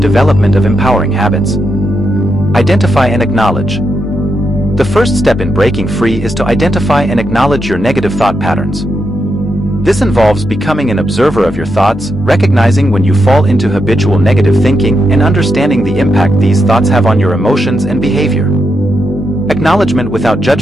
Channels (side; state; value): both; normal; correlation 0.83